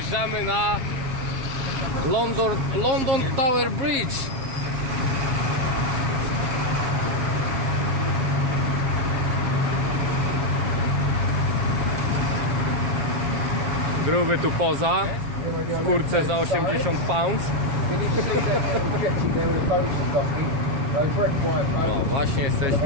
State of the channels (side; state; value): left; late; 7.3 ms